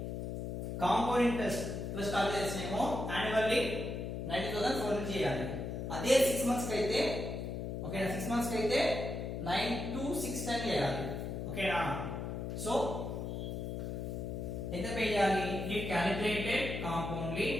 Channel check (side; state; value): left; noise; hum, 4 dB below the sound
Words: compound interest plus calculation ఏమో annually 90,000 చేయాలి. అదే 6 months కి అయితే ఓకేనా 6 months కి అయితే 9,2,6,10 చేయాలి. ఓకేనా. సో ఎంత పే చేయాలి?